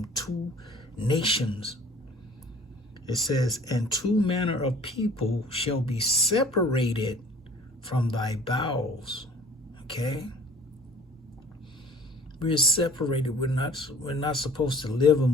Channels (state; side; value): normal; both; correlation 0.50